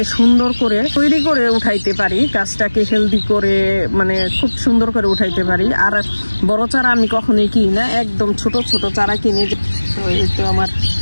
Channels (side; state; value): both; inverted; correlation -1.00